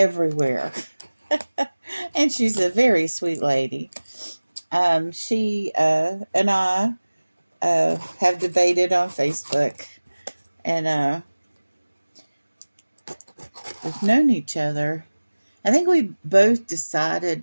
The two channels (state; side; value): inverted; both; correlation -1.00